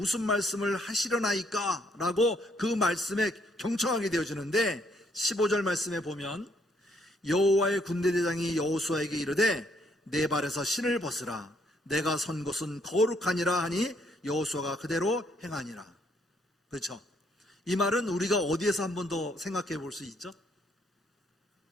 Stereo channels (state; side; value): normal; both; correlation 0.70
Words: 말씀을 하시려나이까? 라고 그 말씀에 경청하게 되어지는데, 15절 말씀에 보면 여호와의 군대 대장이 여호수아에게 이르되 내 발에서 신을 벗으라. 내가 선 곳은 거룩하니라 하니 여호수아가 그대로 행하니라. 그렇죠? 이 말은 우리가 어디에서 한 번 더 생각해 볼 수 있죠?